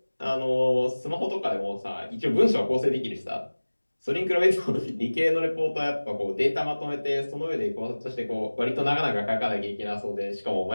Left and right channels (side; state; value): both; inverted; correlation -1.00